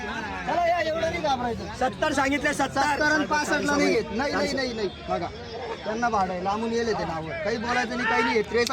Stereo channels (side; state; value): both; identical; correlation 1.00